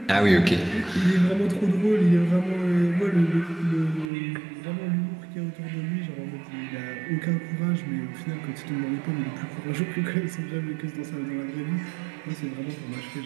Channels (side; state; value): left; drops out; at 4.1 s